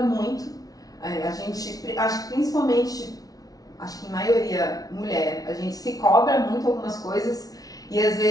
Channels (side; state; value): right; late; 0.18 ms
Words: muito. A gente, acho que principalmente, acho que em maioria mulher, a gente se cobra muito algumas coisas e às